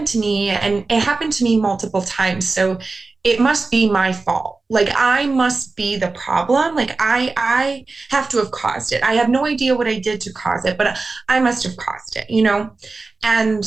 to me and it happened to me multiple times, so it must be my fault. Like I must be the problem. Like I have to have caused it. I have no idea what I did to cause it, but I must have caused it, you know?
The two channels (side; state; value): left; quieter; 3.8 dB